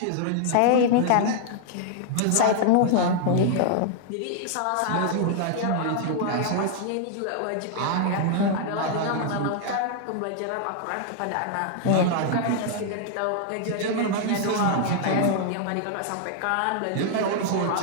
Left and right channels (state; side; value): different; both; correlation -0.01